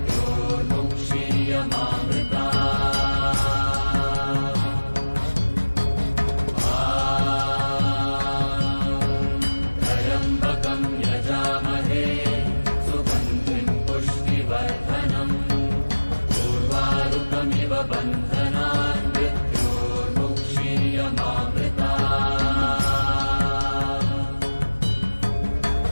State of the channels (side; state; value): both; inverted; correlation -1.00